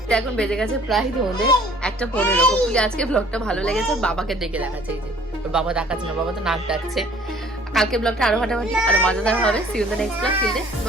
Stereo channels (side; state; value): both; normal; correlation 0.54